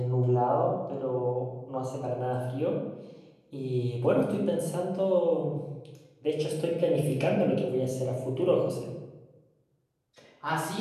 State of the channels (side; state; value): both; identical; correlation 1.00